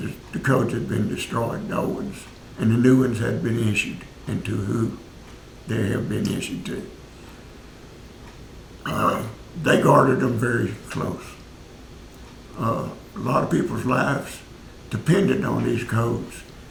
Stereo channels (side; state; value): both; identical; correlation 1.00